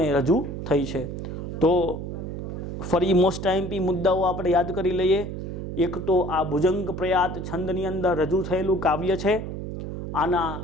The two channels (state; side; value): noise; right; hum, 6 dB below the sound